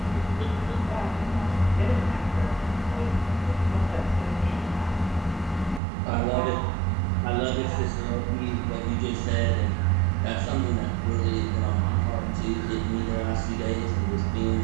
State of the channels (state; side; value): drops out; left; at 5.8 s